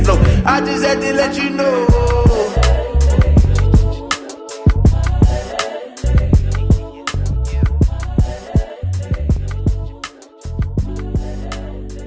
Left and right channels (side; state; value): both; identical; correlation 1.00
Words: I just had to let you know.